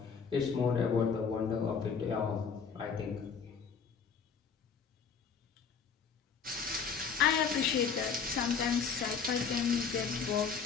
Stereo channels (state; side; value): quieter; right; 6.1 dB